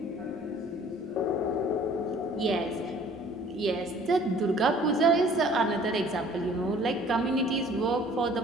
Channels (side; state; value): right; noise; rumble, 28 dB below the sound